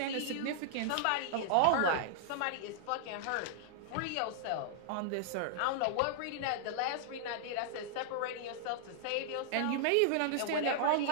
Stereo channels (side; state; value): both; different; correlation -0.01